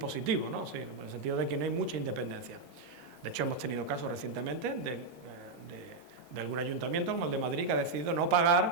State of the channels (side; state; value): left; quieter; 3.7 dB